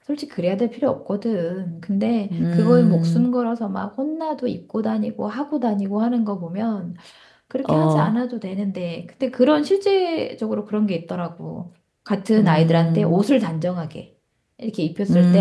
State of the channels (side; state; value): both; identical; correlation 1.00